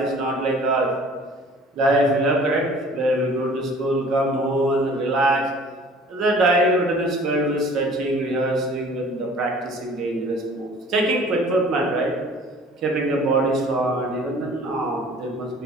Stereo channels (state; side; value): normal; both; correlation 0.49